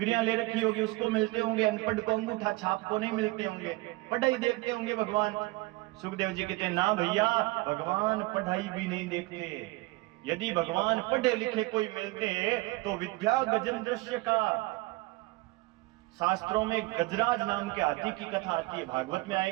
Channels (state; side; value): quieter; left; 21.6 dB